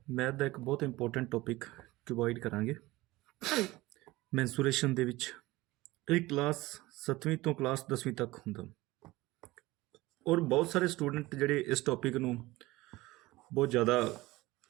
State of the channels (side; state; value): left; quieter; 19.6 dB